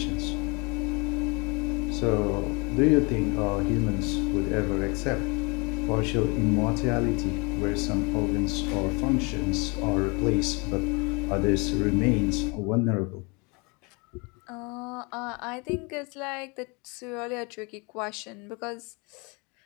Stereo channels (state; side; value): quieter; right; 30.2 dB